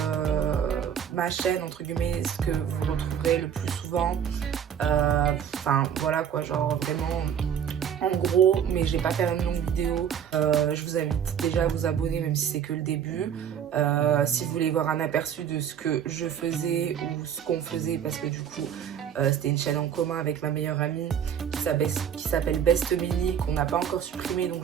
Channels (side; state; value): left; quieter; 8.7 dB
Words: ma chaîne entre guillemets, ce que vous retrouverez le plus souvent. Enfin voilà quoi, genre vraiment en gros, mais je vais pas faire une longue vidéo. Je vous invite déjà à vous abonner même si c'est que le début. Si vous voulez voir un aperçu de ce que je faisais ou ce qu'on faisait, parce que du coup c'était une chaîne en commun avec ma meilleure amie qui s'appelle Best Mini, qu'on n'a pas encore supprimé, donc